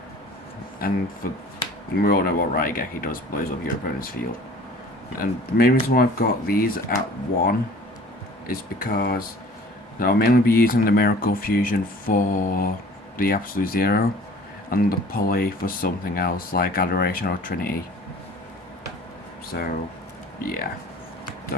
And we all know what Raigeki does, blows up your opponent's field. And the main reason why I've got these at 1 is because I'll mainly be using the Miracle Fusion for the Absolute Zero, and the Poly for something else like Adoration or Trinity. So, yeah,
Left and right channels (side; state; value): both; normal; correlation 0.47